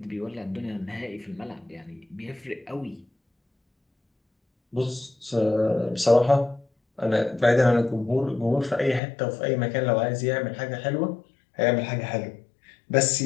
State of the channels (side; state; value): right; drops out; at 9.0 s